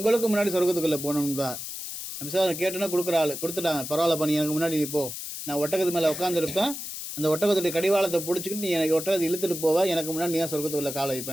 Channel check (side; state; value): left; noise; hiss, 7 dB below the sound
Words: முன்னாடி சொர்க்கத்துக்குள்ளே போகணும்பா. நபி ஸல்லல்லாஹு அலைஹி வஸல்லம் கேட்டோன்னா கொடுக்குற ஆள் கொடுத்துட்டாங்க. பரவாயில்ல பண்ணி எனக்கு முன்னாடி நீ போ, நான் ஒட்டகத்து மேலே உட்காந்துருப்பேன், அந்த ஒட்டகத்துடைய கடிவாளத்தை பிடிச்சிக்கிட்டு நீ எனக்கு ஒட்டகத்தை இழுத்துட்டு போவா, எனக்கு முன்னாடி நீ தான் சொர்க்கத்துக்குள்ளே காலை